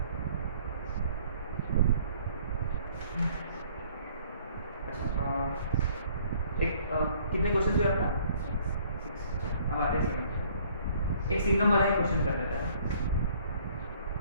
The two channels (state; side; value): inverted; both; correlation -0.58